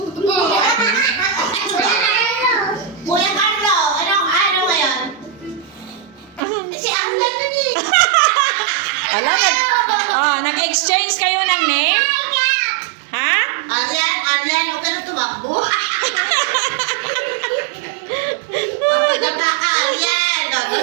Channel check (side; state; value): left; drops out; at 6.4 s